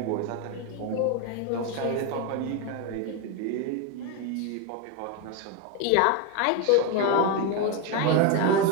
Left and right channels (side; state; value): both; different; correlation 0.02